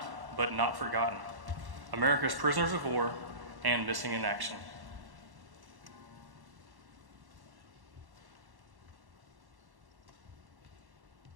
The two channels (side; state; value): left; late; 1.1 ms